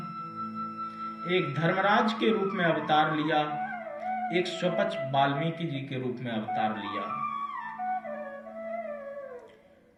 एक धर्मराज के रूप में अवतार लिया, एक स्वपच वाल्मीकि जी के रूप में अवतार लिया।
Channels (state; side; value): identical; both; correlation 1.00